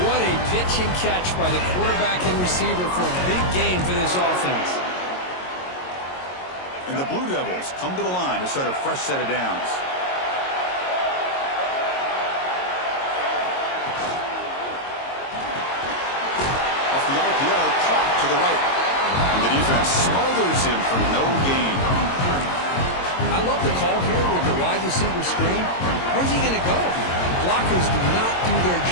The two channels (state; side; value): late; right; 22 ms